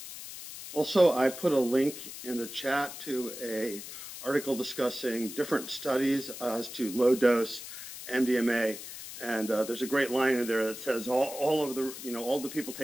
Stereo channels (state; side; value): noise; left; hiss, 11 dB below the sound